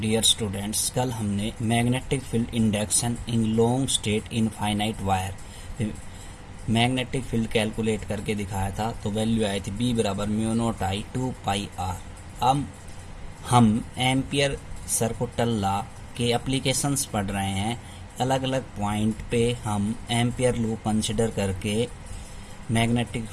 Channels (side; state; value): both; identical; correlation 1.00